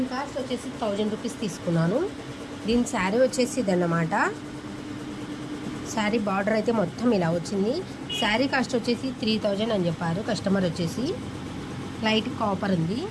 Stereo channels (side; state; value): both; identical; correlation 1.00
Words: కాస్ట్ వచ్చేసి 1000 రూపీస్ తీసుకున్నాను. దీని శారీ వచ్చేసి ఇదన్నమాట. శారీ బార్డర్ అయితే మొత్తం ఇలా వచ్చింది. శారీ కాస్ట్ వచ్చేసి 3000 అని చెప్పారు కస్టమర్. వచ్చేసి లైట్ కాపర్ ఉంది.